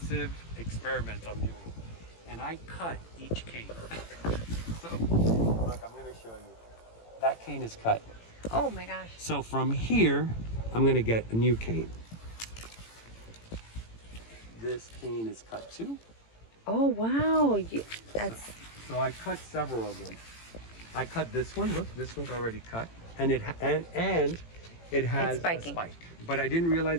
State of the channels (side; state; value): right; late; 18 ms